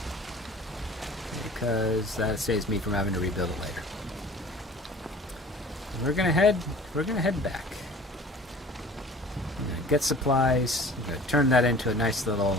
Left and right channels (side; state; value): both; normal; correlation 0.46